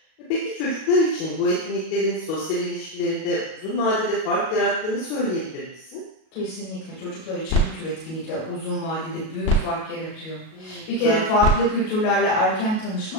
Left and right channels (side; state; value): right; late; 37 ms